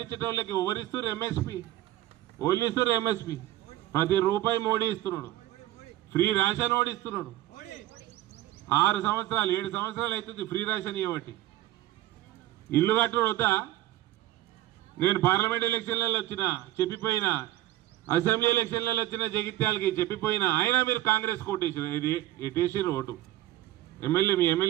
ఎవరిస్తారు? ఎంఎస్పి. ఓళ్ళు ఇస్తారు ఎంఎస్పి. ప్రతి రూపాయి మోడీ ఇస్తున్నాడు. Free ration ఓడిస్తున్నాడు. 6 సంవత్సరాలు 7 సంవత్సరాలు అవుతుంది ఫ్రీ రేషన్ ఇవ్వబట్టి. ఇల్లు కట్టుడు వద్దా? నేను పార్లమెంట్ ఎలక్షన్లలో వచ్చిన చెప్పిపోయినా, అసెంబ్లీ ఎలక్షన్లలో వచ్చిన జగిత్యాలకి చెప్పిపోయినా, అయినా మీరు కాంగ్రెస్ కోటేసారు. ఇది ఎటేసారు ఓటు. ఎమ్మెల్యే, మీ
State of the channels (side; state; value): left; quieter; 14.9 dB